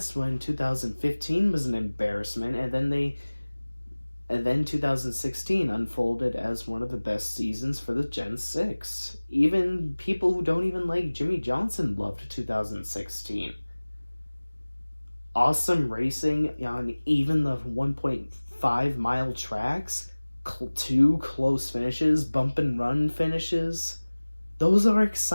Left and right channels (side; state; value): both; inverted; correlation -1.00